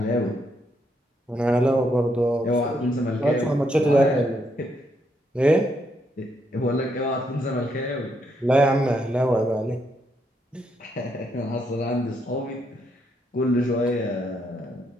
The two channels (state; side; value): normal; both; correlation 0.76